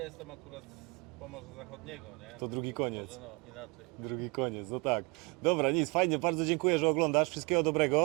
jestem akurat z Pomorza Zachodniego, nie? To drugi koniec. Może, no inaczej. Drugi koniec, no tak. Dobra, nic, fajnie, bardzo dziękuję, że oglądasz. Wszystkiego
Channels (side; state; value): left; quieter; 29.2 dB